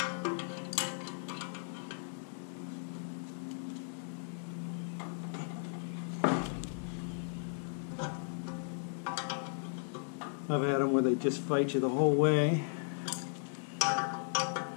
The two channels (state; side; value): silent; right; digital silence